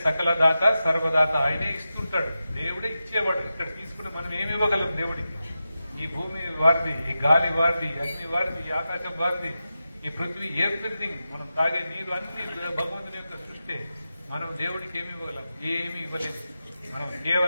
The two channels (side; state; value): both; inverted; correlation -0.92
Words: సకల దాత సర్వదాత, ఆయనే ఇస్తుంటాడు, దేవుడే ఇచ్చేవాడు. ఇక్కడ తీసుకుని మనం ఏమి ఇవ్వగలం దేవుడికి? ఈ భూమి వారిది, ఈ గాలి వారిది, అగ్ని వారిది, ఈ ఆకాశం వారిది, ఈ పృథ్వీ, ఎవ్రీథింగ్, మనం తాగే నీరు అన్ని భగవంతుని యొక్క సృష్టి. మనం దేవుడికి ఏమి ఇవ్వగలం? ఏమి ఇవ్వలేదు. మనం